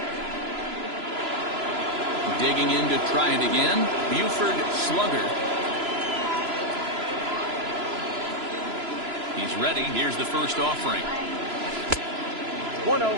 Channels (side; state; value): left; late; 3.0 ms